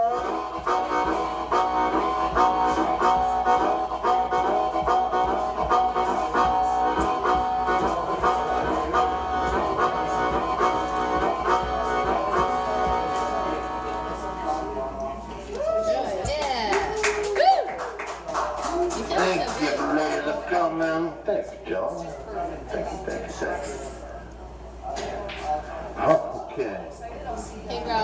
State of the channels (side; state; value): both; identical; correlation 1.00